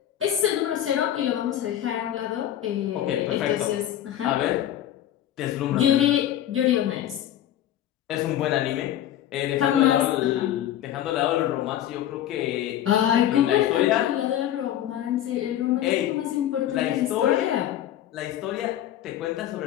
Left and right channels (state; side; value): quieter; right; 11.7 dB